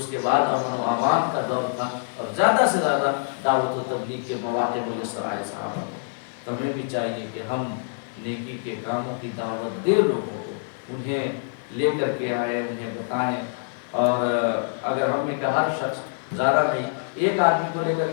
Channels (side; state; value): right; silent; digital silence